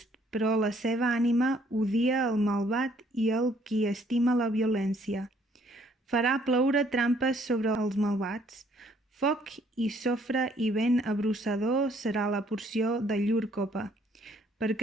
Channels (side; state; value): both; normal; correlation 0.64